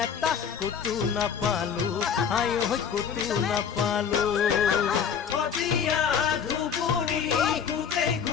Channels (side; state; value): right; quieter; 7.4 dB